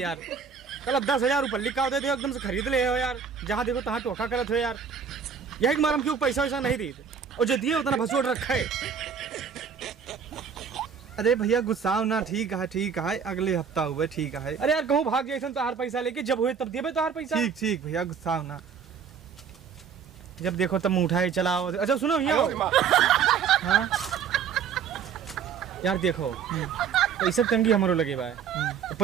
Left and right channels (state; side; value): quieter; left; 6.8 dB